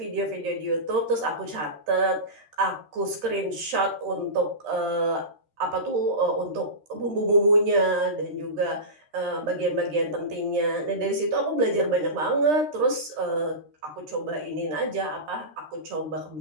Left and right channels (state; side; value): late; left; 13 ms